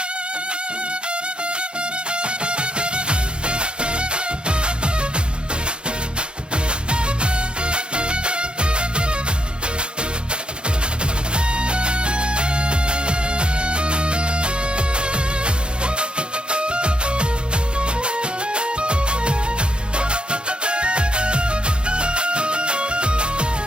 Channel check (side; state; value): left; late; 0.053 ms